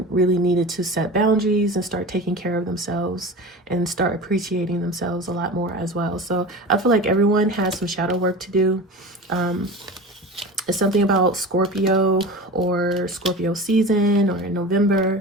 really needed to set boundaries and start taking care of themselves and start appreciating themselves a lot more as well. So I feel like everyone has some shadow work to do. It's something about Scorpio or Scorpio season or in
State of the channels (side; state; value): both; normal; correlation 0.32